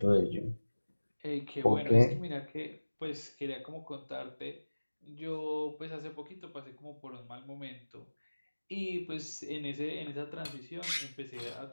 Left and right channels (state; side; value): inverted; both; correlation -1.00